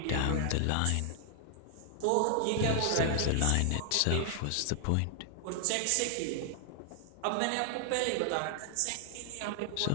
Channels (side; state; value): both; different; correlation 0.00